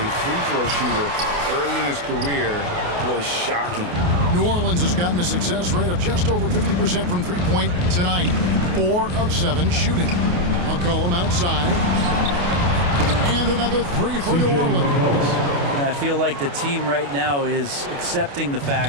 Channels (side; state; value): left; late; 28 ms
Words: free throw shooter early in his career was shocking. New Orleans has gotten a success rate of just over 50% from three-point tonight. 4 of 7 shooting. McCollum outside. And another 3 for New Orleans. I feel like the team right now is accepting the